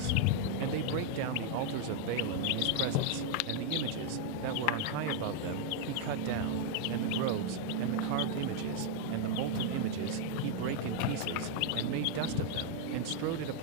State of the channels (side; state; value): both; different; correlation 0.00